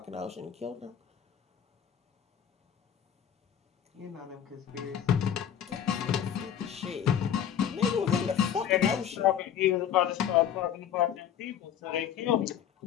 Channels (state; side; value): quieter; right; 9.4 dB